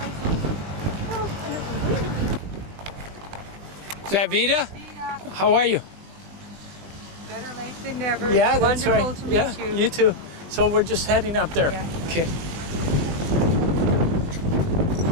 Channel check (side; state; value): left; late; 20 ms